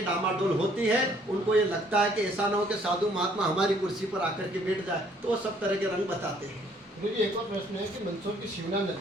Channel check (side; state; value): both; normal; correlation 0.62